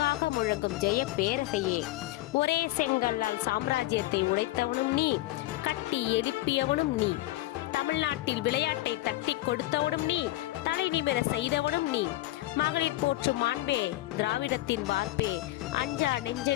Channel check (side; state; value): right; quieter; 17.5 dB